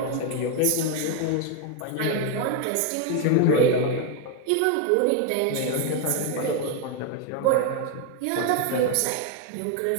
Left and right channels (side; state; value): both; different; correlation 0.01